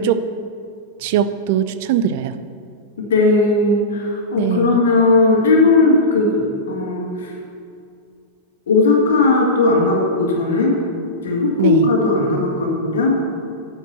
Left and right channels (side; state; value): both; normal; correlation -0.20